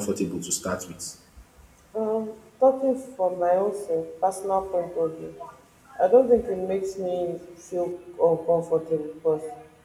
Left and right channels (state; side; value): identical; both; correlation 1.00